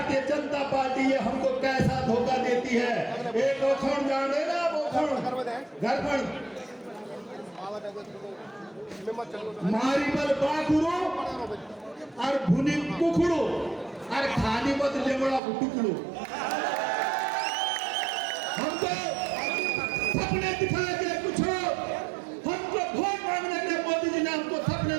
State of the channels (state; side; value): drops out; left; at 15.4 s